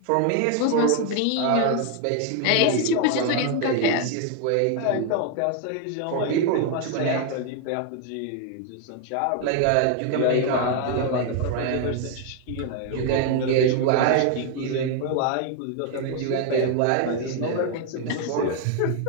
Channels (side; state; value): both; different; correlation 0.01